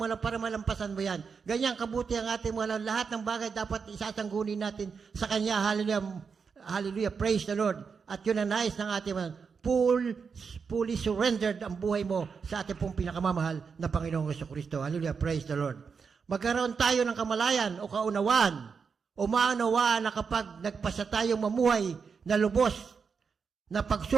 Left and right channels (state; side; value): quieter; left; 5.7 dB